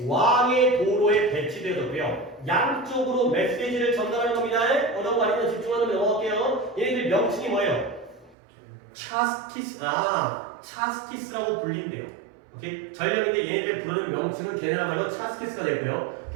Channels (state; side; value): drops out; left; at 8.3 s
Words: 왕의 도로에 배치되었고요. 양쪽으로 메시지를 전달하는 겁니다. 어려운 거 아니면 집중하면 넘어갈게요. 얘네들 명칭이 뭐예요? 차스키스라고 불린대요. 오케이? 전령인데 얘네들 부르는 명칭은 걔네야말로 차스키스가 되고요.